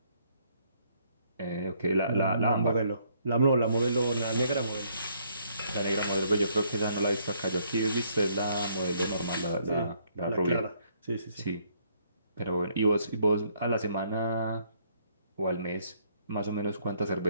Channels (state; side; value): inverted; both; correlation -0.68